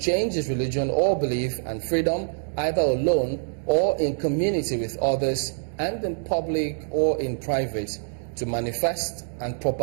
his religion or belief, and freedom either alone or in community with others, and in public or in private, to manifest and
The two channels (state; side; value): silent; left; digital silence